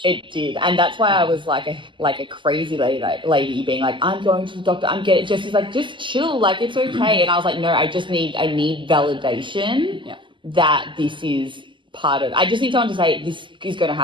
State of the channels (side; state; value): left; late; 0.24 ms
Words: It did. And that's why I was like a crazy lady being like, I'm going to the doctor. Jesse's like, just chill. Like, it's okay. And I was like, no, I need validation that this is part of, I just need someone to say this is going to